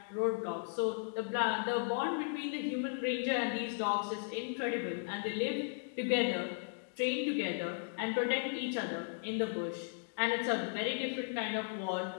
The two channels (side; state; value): right; silent; digital silence